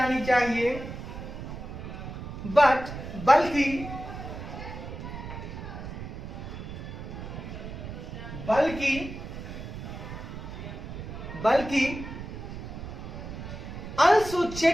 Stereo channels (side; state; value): right; noise; rumble, 9 dB below the sound